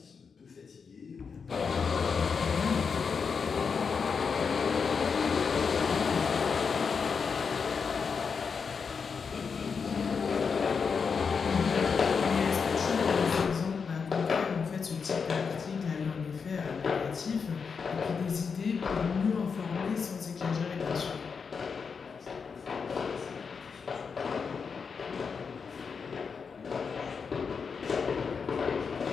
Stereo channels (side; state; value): right; quieter; 5.7 dB